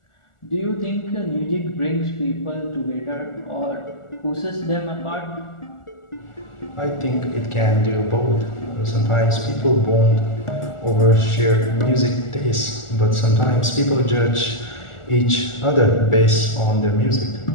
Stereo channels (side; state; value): right; late; 1.4 ms